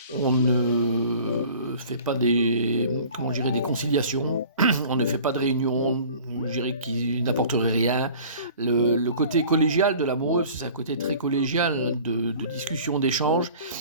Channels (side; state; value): both; inverted; correlation -0.46